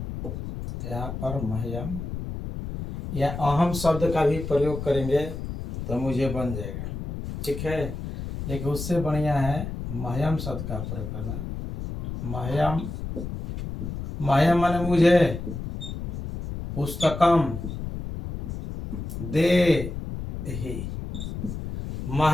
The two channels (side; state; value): left; noise; rumble, 7 dB below the sound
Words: यहाँ पर मह्यम या अहम शब्द का भी प्रयोग करेंगे तो मुझे बन जाएगा, ठीक है। लेकिन उससे बढ़िया है मह्यम शब्द का प्रयोग करना। मह्यम माने मुझे, पुस्तकम देहि,